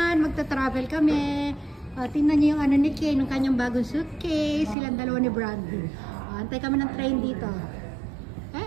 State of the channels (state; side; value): drops out; left; at 4.8 s